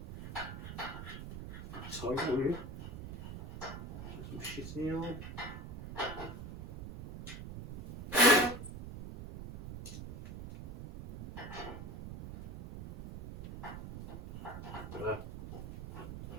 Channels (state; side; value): noise; right; rumble, 9 dB below the sound